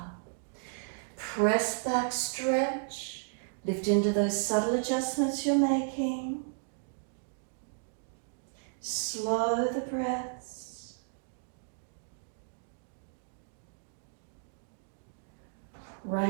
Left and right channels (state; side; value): silent; left; digital silence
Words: Press back, stretch. Lift into those subtle adjustments you're making. Slow the breaths.